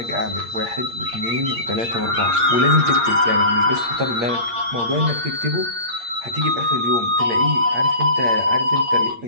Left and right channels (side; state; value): left; late; 8.6 ms